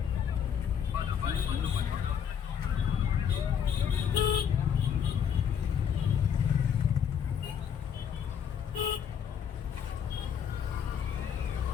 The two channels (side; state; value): right; quieter; 8.0 dB